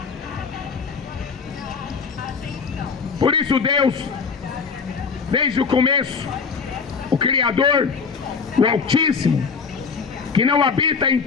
Por isso Deus, desde o começo, o Criador, o Altíssimo, que não habita em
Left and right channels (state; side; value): quieter; right; 5.4 dB